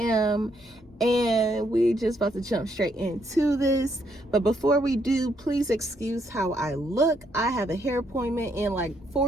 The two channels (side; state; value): both; normal; correlation 0.73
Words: And we just about to jump straight into this. But before we do, please excuse how I look. I have a hair appointment in like